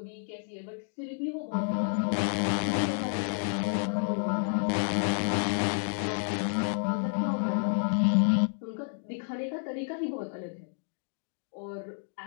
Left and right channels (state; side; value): silent; right; digital silence